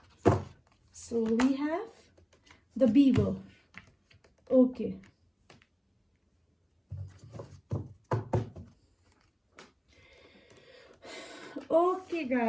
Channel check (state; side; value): identical; both; correlation 1.00